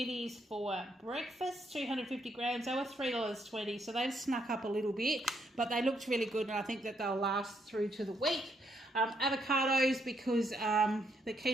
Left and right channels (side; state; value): both; normal; correlation 0.75